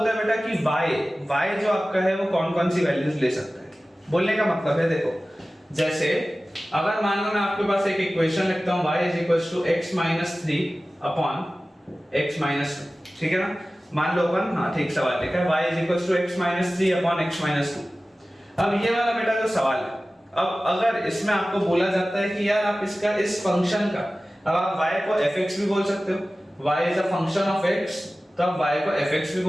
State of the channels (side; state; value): both; normal; correlation 0.96